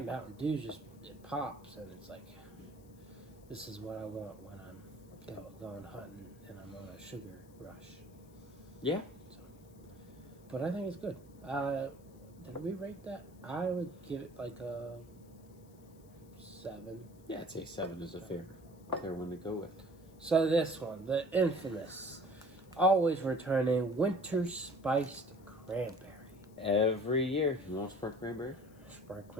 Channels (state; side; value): noise; left; hiss, 28 dB below the sound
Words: Dew just, it pops and it's like, this is what I want when I'm going hunting and I'm on a sugar rush. Yeah. So, but I think it's good. Did we rate that? I would give it like a 7. Yeah, I'd say 7 is a fair one to go with. So this one, the infamous, always returning Winter Spiced Cranberry. Every year. You want Sprite Cranberry? Sprite